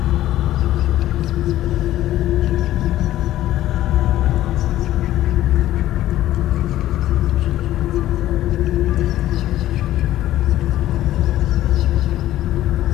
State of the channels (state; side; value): quieter; right; 14.0 dB